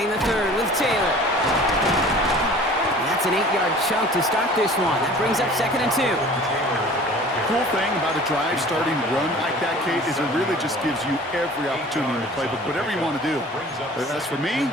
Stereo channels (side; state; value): both; normal; correlation 0.46